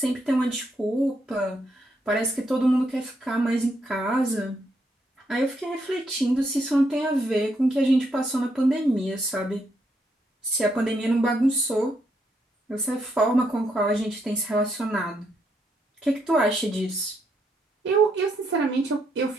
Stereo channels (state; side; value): normal; both; correlation 0.77